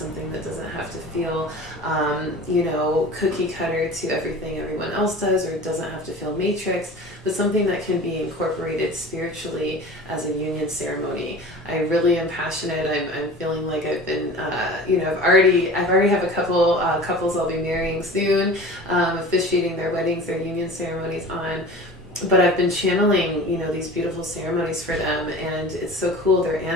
that doesn't have to feel, cookie cutter to everything everyone else does, or it doesn't have to feel matrix, but something that can be incorporated spiritually as a union ceremony. I really am passionate. I'm feeling like I've been, I've already have a couple couples I'll be marrying soon, officiating their weddings, their union ceremonies on. But I've been channeling, these beautiful ceremonies for them, and it's so cool. Their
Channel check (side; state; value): both; normal; correlation 0.39